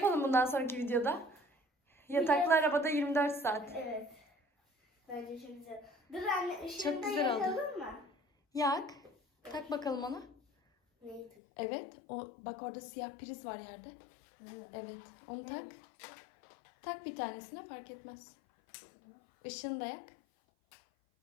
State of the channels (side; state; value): right; drops out; at 11.3 s